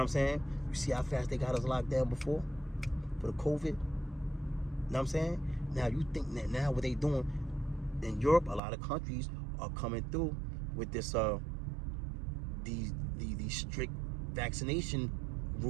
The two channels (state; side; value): drops out; left; at 8.6 s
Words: what I'm saying? You see how fast they got us locked down before for the COVID? You know what I'm saying? Now you think that now what they doing in Europe, a lot of countries are coming through with this these strict vaccination